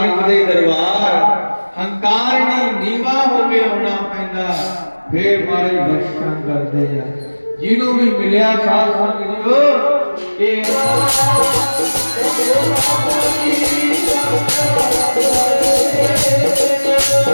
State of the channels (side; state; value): both; inverted; correlation -1.00